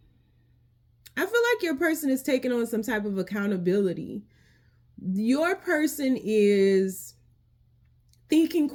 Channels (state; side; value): identical; both; correlation 1.00